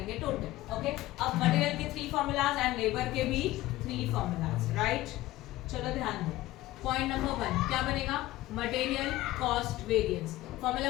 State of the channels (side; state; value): right; quieter; 16.8 dB